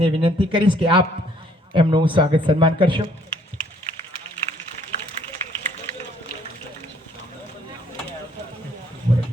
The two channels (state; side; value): normal; both; correlation 0.63